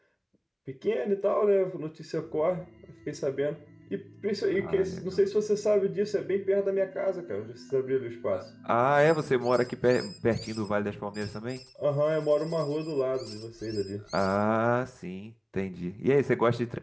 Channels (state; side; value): identical; both; correlation 1.00